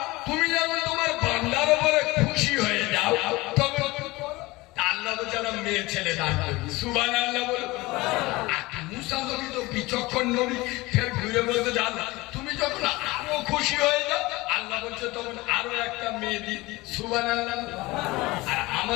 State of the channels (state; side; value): quieter; right; 21.2 dB